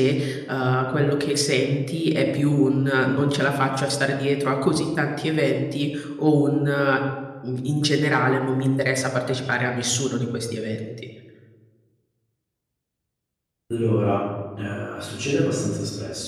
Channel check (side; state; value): both; identical; correlation 1.00